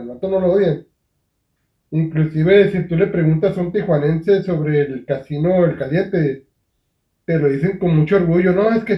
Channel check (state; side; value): identical; both; correlation 1.00